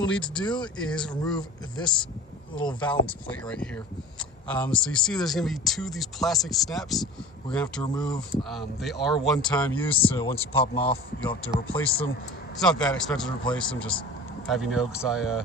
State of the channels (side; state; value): both; normal; correlation 0.39